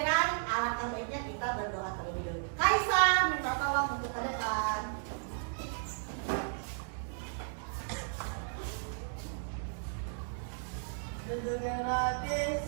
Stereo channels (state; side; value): silent; left; digital silence